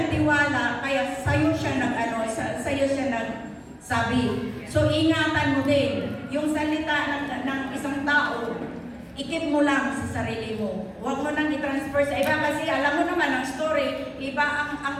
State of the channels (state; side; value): identical; both; correlation 1.00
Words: kaya sa'yo siya nagsabi. So, ingatan mo din. Yung salita ng isang tao, ikip mo lang sa sarili mo. Huwag mo nang i-transfer sa iba kasi alam mo naman ang story, iba